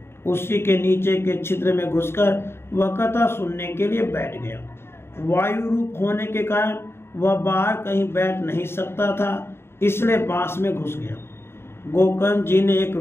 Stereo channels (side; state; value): right; late; 0.12 ms